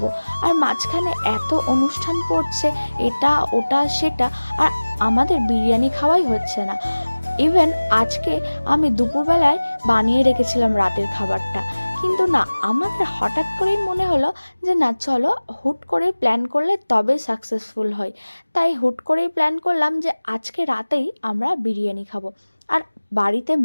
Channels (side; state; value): both; inverted; correlation -1.00